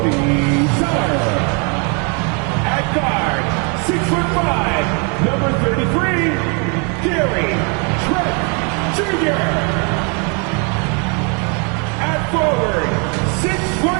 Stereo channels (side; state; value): left; quieter; 35.3 dB